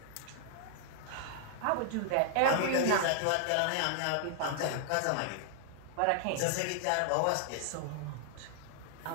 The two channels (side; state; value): both; different; correlation 0.00